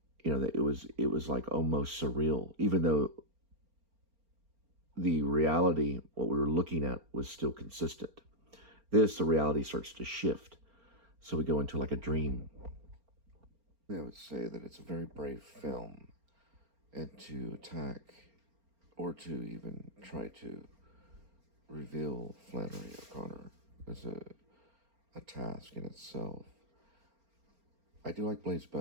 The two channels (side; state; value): left; late; 4.4 ms